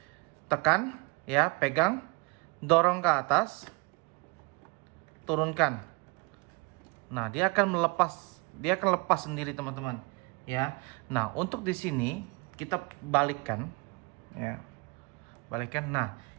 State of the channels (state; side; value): quieter; left; 28.7 dB